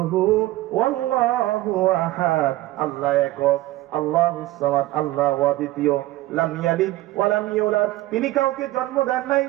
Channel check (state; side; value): quieter; left; 17.2 dB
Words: হু ওয়াল্লাহু আহাদ, আল্লাহ একক, আল্লাহুস সামাদ, আল্লাহ অদ্বিতীয়, লাম ইয়ালিদ ওয়া লাম ইউলাদ, তিনি কাউকে জন্ম দেন নাই,